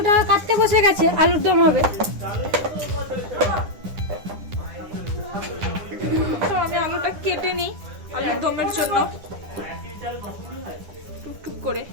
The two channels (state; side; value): late; left; 10 ms